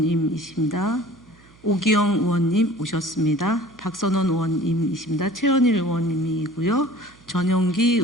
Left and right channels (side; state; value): right; noise; hum, 28 dB below the sound